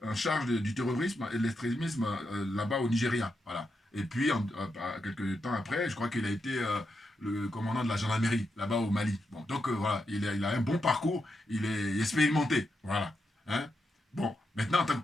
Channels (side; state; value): both; normal; correlation 0.85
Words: en charge du terrorisme et de l'extrémisme là-bas au Nigeria, voilà. Et puis quelques temps après, je crois qu'il a été le commandant de la gendarmerie là-bas au Mali. Bon, donc voilà, il a un bon parcours, il est expérimenté, voilà. Hein? Bon, maintenant en tant que